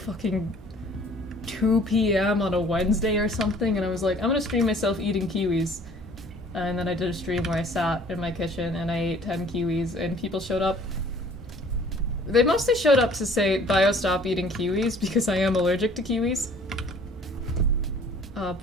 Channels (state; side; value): normal; both; correlation 0.53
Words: 2 p.m. on a Wednesday or something, and I was like, I'm gonna stream myself eating kiwis. And then I did a stream where I sat in my kitchen and I ate 10 kiwis, and people showed up. They mostly showed up to say, Bio, stop eating kiwis, because I am allergic to kiwis.